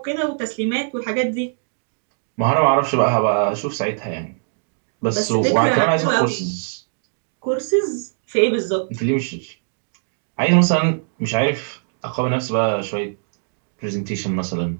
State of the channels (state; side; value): silent; left; digital silence